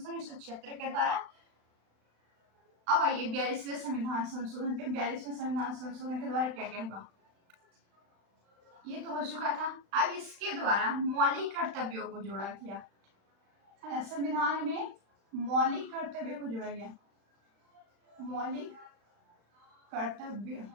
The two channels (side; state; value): left; late; 35 ms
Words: 1976 के द्वारा। अब आइए 42वें संविधान संशोधन पे। 42वें संविधान संशोधन के द्वारा क्या क्या हुआ? ये तो हो चुका था। अब इसके द्वारा मौलिक कर्तव्यों को जोड़ा गया, है ना। संविधान में मौलिक कर्तव्य को जोड़ा गया। मौलिक कर्तव्य,